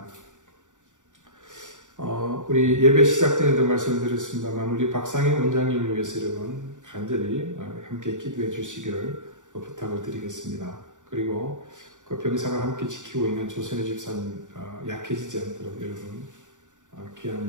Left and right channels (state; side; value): late; left; 0.86 ms